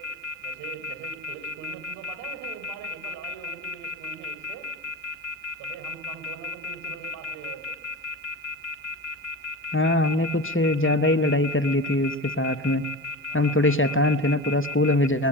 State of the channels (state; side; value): normal; both; correlation 0.30